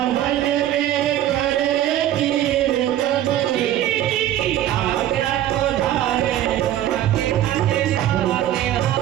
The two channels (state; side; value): quieter; left; 12.4 dB